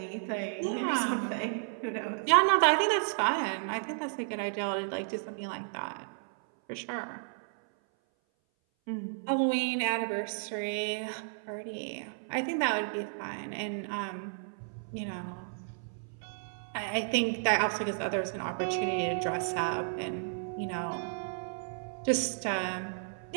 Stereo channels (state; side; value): silent; left; 56 dB below the other